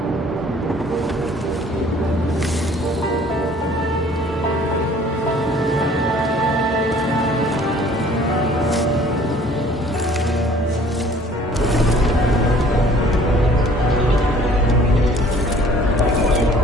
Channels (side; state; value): both; normal; correlation 0.54